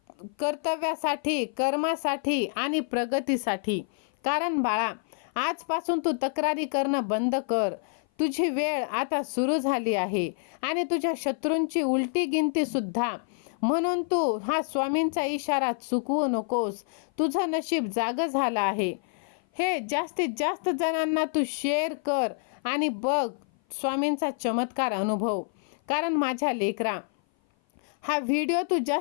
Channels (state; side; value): silent; right; 56 dB below the other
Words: कर्तव्यासाठी, कर्मासाठी आणि प्रगतीसाठी. कारण बाळा, आजपासून तू तक्रारी करणं बंद कर. तुझी वेळ आता सुरू झाली आहे आणि तुझ्या शत्रूंची उलटी गिनती सुद्धा. म्हणून तू हा स्वामींचा इशारा चुकवू नकोस. तुझं नशीब जागं झालं आहे. हे जास्तीत जास्त जणांना तू शेअर कर आणि बघ स्वामींचा चमत्कार अनुभव. कारण माझ्या लेकरा, हा व्हिडिओ तू